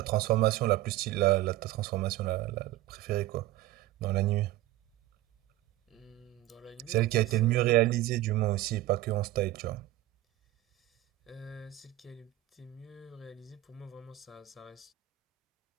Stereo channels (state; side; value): quieter; left; 16.0 dB